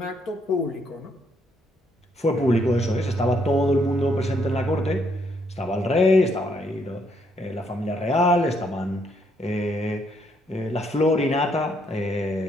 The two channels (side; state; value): both; normal; correlation 0.72